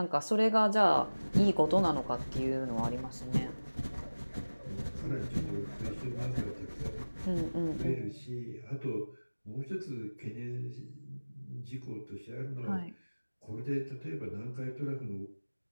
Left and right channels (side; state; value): both; inverted; correlation -1.00